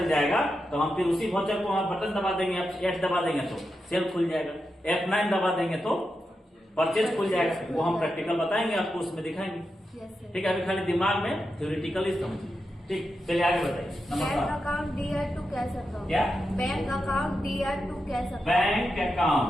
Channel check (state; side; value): normal; both; correlation 0.88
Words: जाएगा तो हम फिर उसी वाउचर को हम बटन दबा देंगे, F8 दबा देंगे तो सेल खुल जाएगा, F9 दबा देंगे तो परचेज खुल जाएगा। वो हम प्रैक्टिकल बताएंगे आपको, उसमें दिखाएंगे। ठीक है, अभी खाली दिमाग में थ्योरेटिकली समझिए। ठीक, चलिए आगे बताइए। Bank account DR to cash account. क्या? Bank account DR to cash account. Bank account